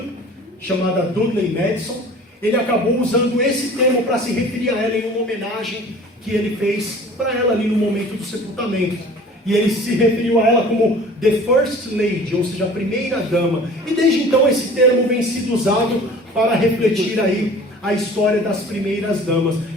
chamada Dudley Madison, ele acabou usando esse termo para se referir a ela em uma homenagem que ele fez para ela ali no momento do sepultamento. E ele se referiu a ela como The First Lady, ou seja, a primeira-dama. E desde então esse termo vem sido usado para refletir aí a história das primeiras damas.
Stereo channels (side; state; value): both; normal; correlation 0.45